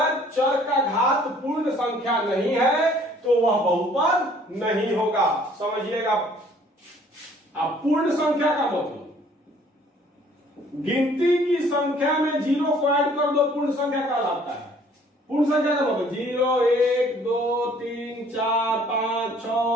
चर का घात पूर्ण संख्या नहीं है तो वह बहुपद नहीं होगा। समझिएगा, आप पूर्ण संख्या का मतलब गिनती की संख्या में जीरो को ऐड कर दो, पूर्ण संख्या कहलाता है। पूर्ण संख्या का मतलब 0 1 2 3 4 5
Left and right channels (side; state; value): both; normal; correlation 0.57